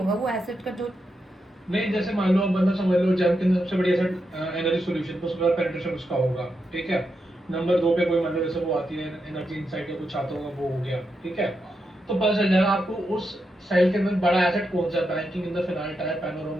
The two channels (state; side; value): normal; both; correlation 0.85